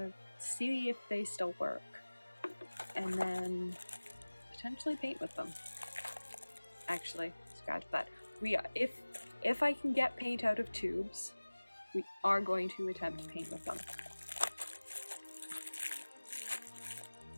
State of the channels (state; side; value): inverted; both; correlation -1.00